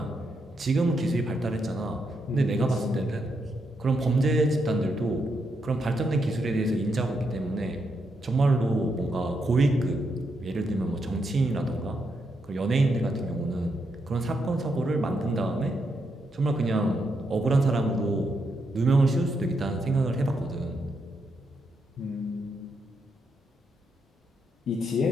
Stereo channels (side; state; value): both; normal; correlation 0.80